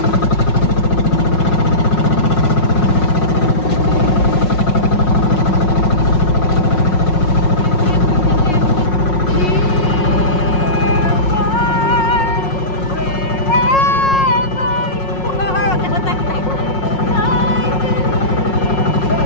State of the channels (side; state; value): right; late; 5.5 ms